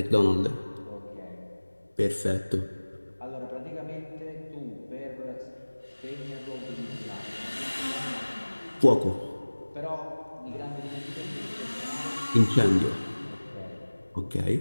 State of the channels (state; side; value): inverted; both; correlation -1.00